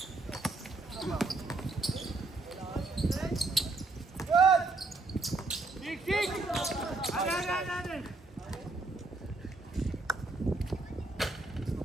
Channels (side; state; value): left; quieter; 3.3 dB